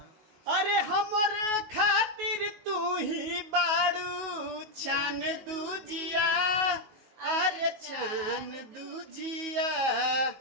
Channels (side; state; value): left; late; 19 ms